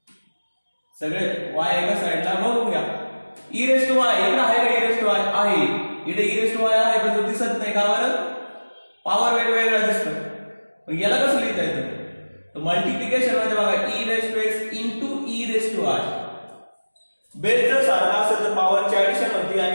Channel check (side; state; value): both; inverted; correlation -1.00